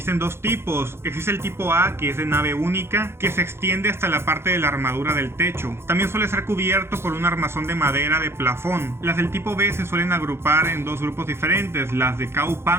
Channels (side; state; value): left; late; 0.12 ms